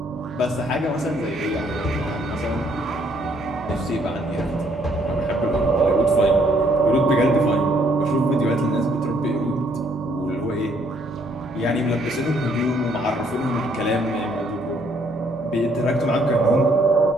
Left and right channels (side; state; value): right; noise; hum, 19 dB below the sound